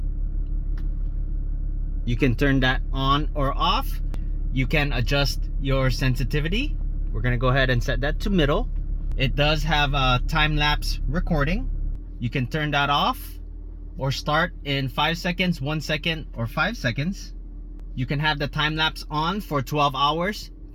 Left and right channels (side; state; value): both; identical; correlation 1.00